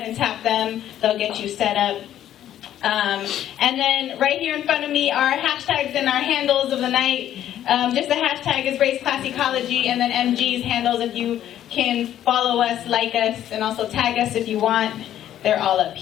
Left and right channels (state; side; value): quieter; right; 11.5 dB